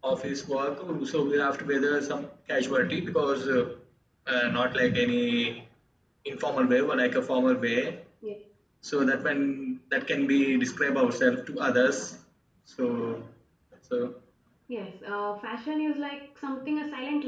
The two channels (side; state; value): both; identical; correlation 1.00